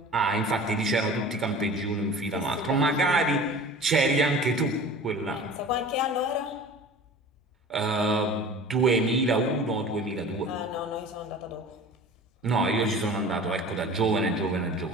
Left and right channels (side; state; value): both; normal; correlation 0.40